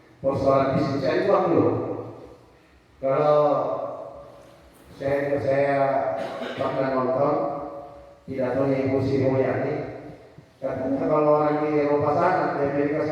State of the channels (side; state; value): both; identical; correlation 1.00